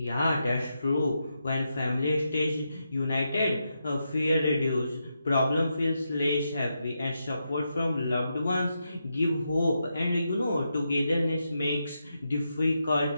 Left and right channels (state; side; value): inverted; both; correlation -0.85